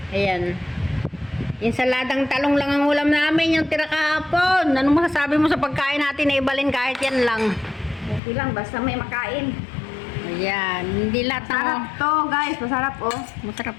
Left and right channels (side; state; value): right; drops out; at 8.2 s